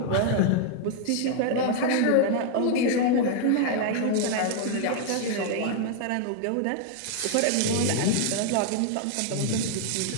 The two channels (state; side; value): different; both; correlation 0.00